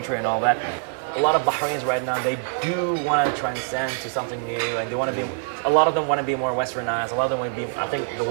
and all that. A lot of Bahrainis right now, they do want to transcend to something new, and they want to be, a lot of them want to be more westernized, a lot of them want to be, I think the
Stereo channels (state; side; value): silent; left; digital silence